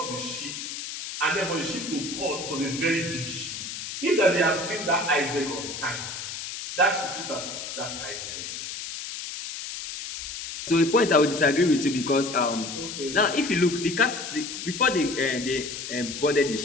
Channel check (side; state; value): left; noise; hiss, 7 dB below the sound